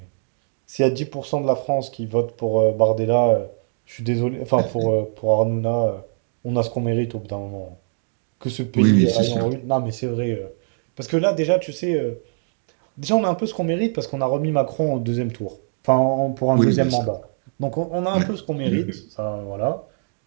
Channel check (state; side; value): silent; left; digital silence